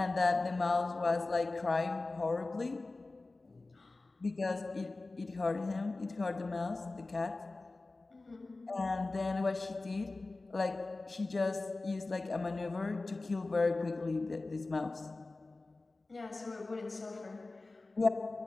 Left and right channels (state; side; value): quieter; right; 3.3 dB